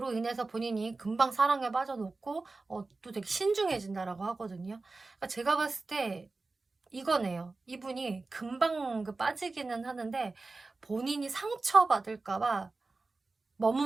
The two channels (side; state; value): left; quieter; 3.6 dB